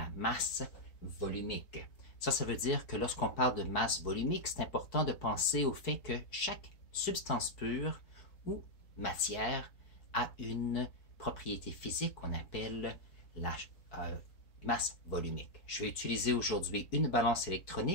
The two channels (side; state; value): right; late; 4.6 ms